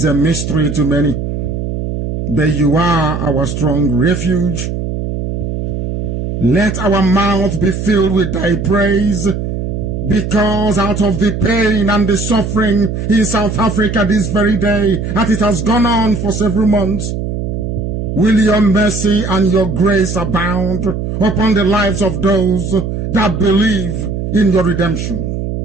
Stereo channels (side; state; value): right; noise; hum, 4 dB below the sound